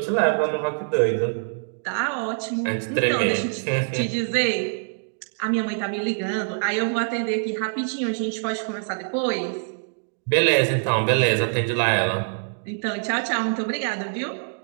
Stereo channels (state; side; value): silent; left; digital silence